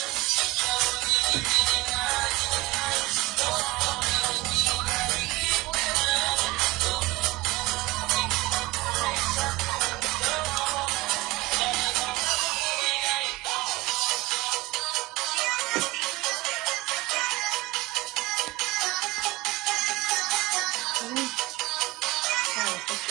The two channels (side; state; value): left; quieter; 20.1 dB